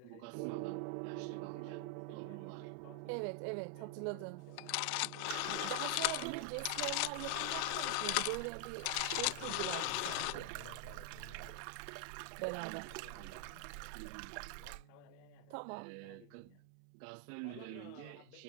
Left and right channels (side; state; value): both; different; correlation 0.00